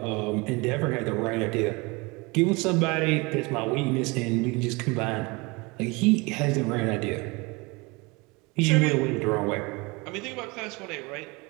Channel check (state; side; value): quieter; left; 26.2 dB